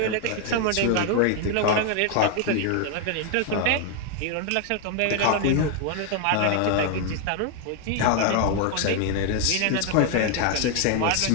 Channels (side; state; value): both; different; correlation 0.00